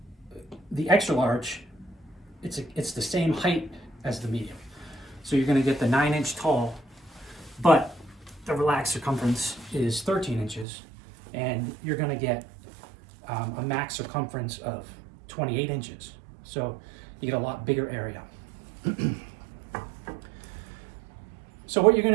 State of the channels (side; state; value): left; drops out; at 10.7 s